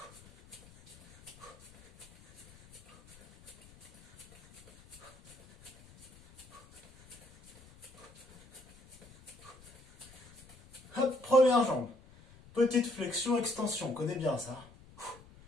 Hop, première jambe. Petite flexion, extension. On connaît bien ça.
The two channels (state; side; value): noise; left; rumble, 23 dB below the sound